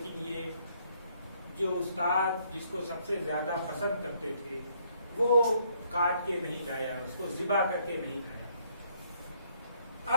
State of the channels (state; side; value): inverted; both; correlation -0.68